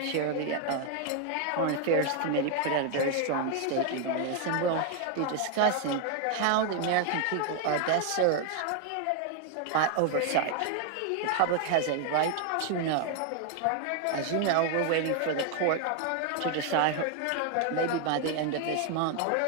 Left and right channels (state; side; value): different; both; correlation 0.01